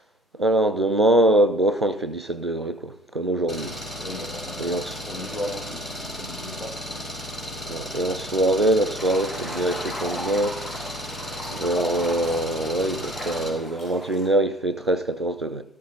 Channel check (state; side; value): normal; both; correlation 0.51